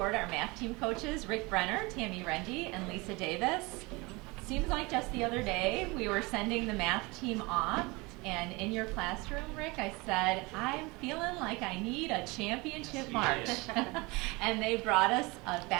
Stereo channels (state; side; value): quieter; left; 25.0 dB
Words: our math team coaches, Rick Brenner, Tammy Rendy, and Lisa Davis. Seems like just the other day we were sending the math team off, and in your classroom, Rick, I said, I'm feeling like I need a championship march. And they brought us a